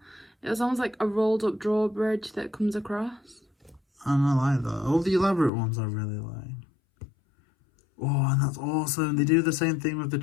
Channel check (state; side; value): drops out; right; at 5.5 s